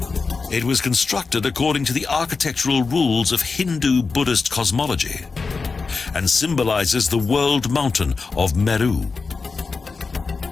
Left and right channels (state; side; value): quieter; right; 4.5 dB